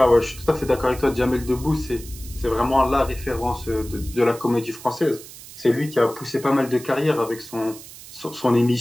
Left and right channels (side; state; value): right; noise; hiss, 16 dB below the sound